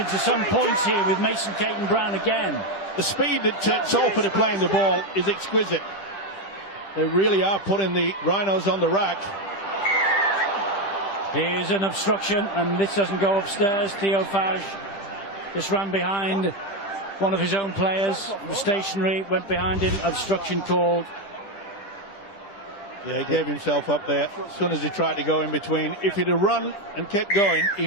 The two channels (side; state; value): right; late; 10 ms